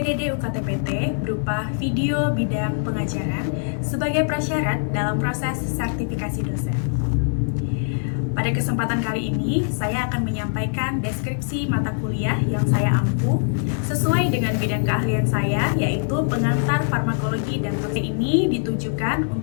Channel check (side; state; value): right; silent; 64 dB below the other